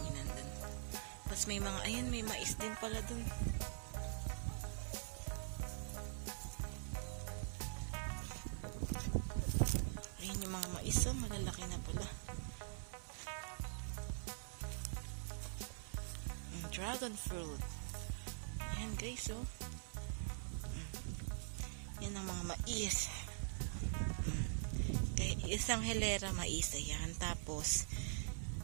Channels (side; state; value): left; silent; digital silence